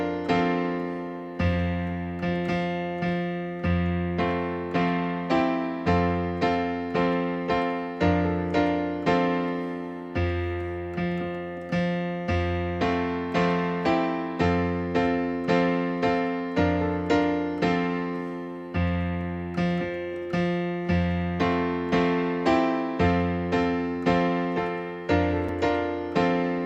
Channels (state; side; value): identical; both; correlation 1.00